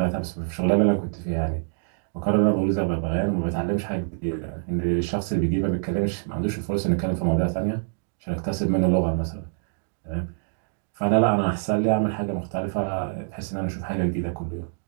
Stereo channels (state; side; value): silent; left; digital silence